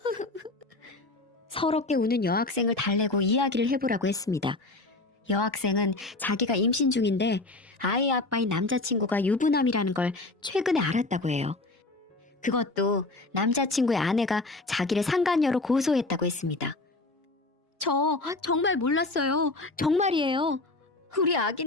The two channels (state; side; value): quieter; right; 3.1 dB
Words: 서럽게 우는 여학생을 달래고 이야기를 해보라고 했습니다. 여학생은 자기가 임신 중인데 아이 아빠인 남자친구가 유부남이라는 걸 최근에 알았다고 해요. 그것도 남자친구의 아내가 자기를 상간녀로 고소했다고 했습니다. 저 정말 몰랐어요. 정말이에요. 우리